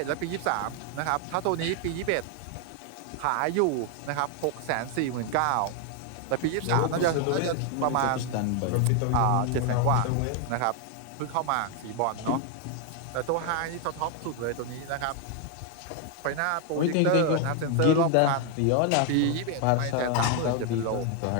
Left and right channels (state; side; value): different; both; correlation 0.01